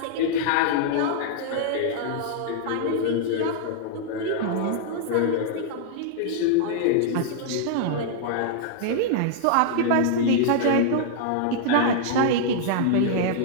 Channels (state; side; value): different; both; correlation -0.01